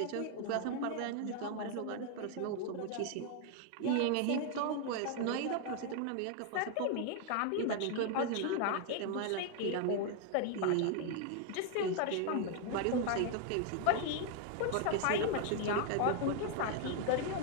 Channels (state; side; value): different; both; correlation 0.00